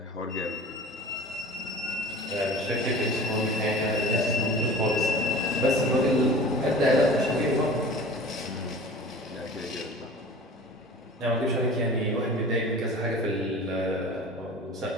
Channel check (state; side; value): normal; both; correlation 0.40